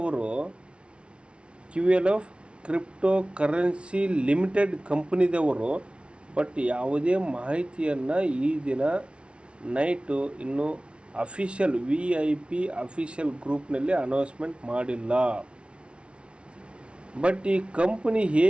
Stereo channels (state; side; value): late; left; 0.059 ms